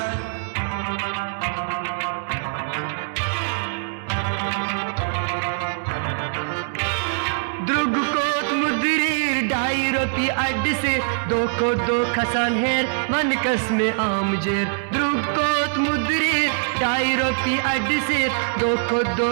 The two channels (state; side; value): silent; left; digital silence